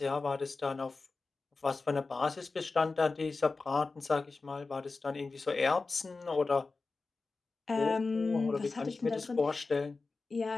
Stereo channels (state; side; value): quieter; right; 3.9 dB